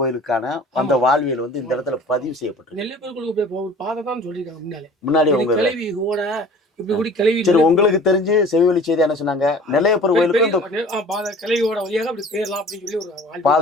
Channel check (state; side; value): normal; both; correlation 0.45